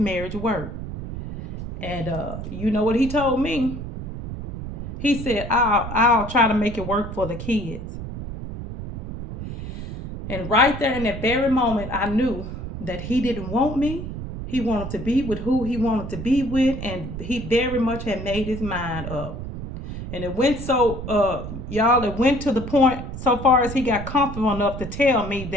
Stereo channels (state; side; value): noise; right; rumble, 8 dB below the sound